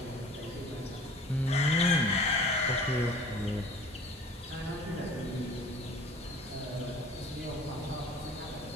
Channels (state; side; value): normal; both; correlation 0.47